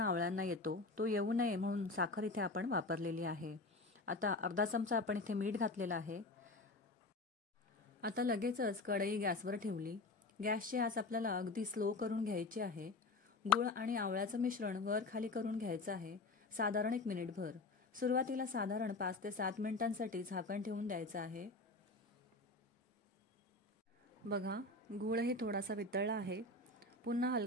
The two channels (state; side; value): quieter; right; 3.2 dB